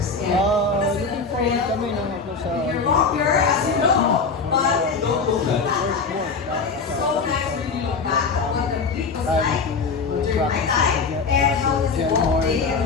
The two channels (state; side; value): quieter; right; 4.8 dB